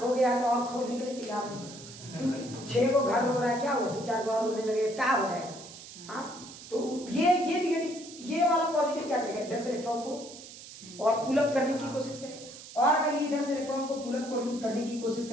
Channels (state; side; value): noise; right; hiss, 15 dB below the sound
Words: गया तो और खोने के लिए तैयार नहीं। 6 को घर हो रहा है, क्या हुआ 2-4 बार रोने लगे क्या हो जाएगा? हाँ तो ये निगेटिव, ये वाला पॉजिटिव क्या करेगा? इधर से इलेक्ट्रॉन को और पुल अप करने की कोशिश करेगा। और अगर ये इधर से इलेक्ट्रॉन को पुल अप करने की कोशिश